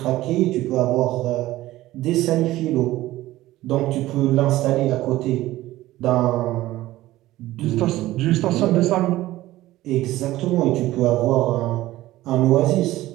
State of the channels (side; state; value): left; quieter; 16.3 dB